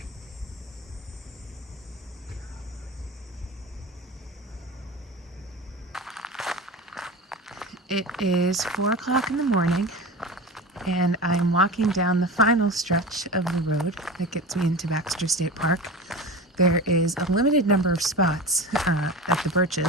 It is 4 o'clock in the morning, and I'm walking down the final stretch of the road that gets me into Baxter State Park. There is a limited number of spots at the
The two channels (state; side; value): normal; both; correlation 0.30